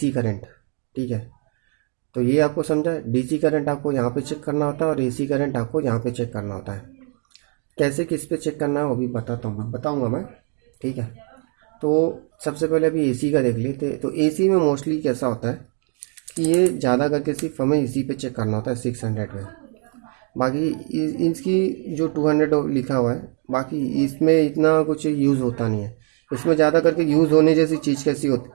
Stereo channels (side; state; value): left; quieter; 37.4 dB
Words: करंट। ठीक है, तो ये आपको समझा, डीसी करंट आपको यहाँ पे चेक करना होता है और एसी करंट आपको यहाँ पे चेक करना होता है। कैसे किस पे चेक करना है वो भी बताऊँगा मैं। ठीक है, तो सबसे पहले अभी एसी का देख लेते। तो एसी में मोस्टली कैसा होता है कि ये ज़्यादा करके सिर्फ हमें इसी पे चेक करना होता है 600 में। बाकी इसकी जो 200 लिखा हुआ है, बाकी इसमें इतना कुछ यूज़ होता नहीं है। इसमें ज़्यादा करके यूज़ होने जैसी चीज़ कैसी होती,